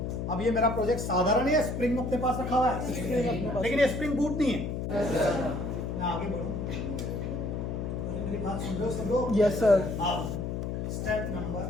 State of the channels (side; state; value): left; noise; hum, 3 dB below the sound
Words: अब ये मेरा प्रोजेक्ट साधारण है, स्प्रिंग अपने पास रखा हुआ है, लेकिन ये स्प्रिंग बूट नहीं है। मैं आगे बढ़ूं, मेरी बात सुन रहे हो सब लोग, यस सर। अब स्टेप